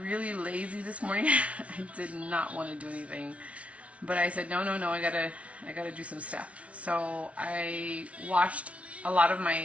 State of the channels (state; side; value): late; left; 0.064 ms